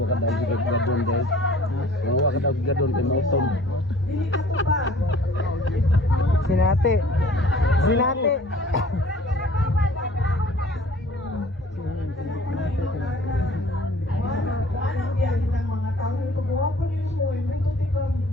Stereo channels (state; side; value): normal; both; correlation 0.51